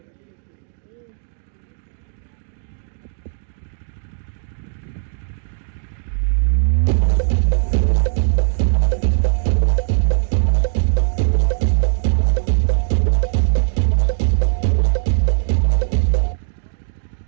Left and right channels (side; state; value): left; silent; digital silence